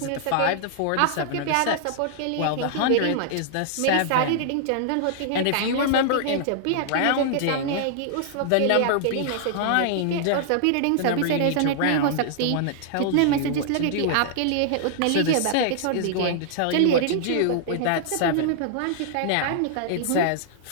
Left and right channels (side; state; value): both; different; correlation -0.01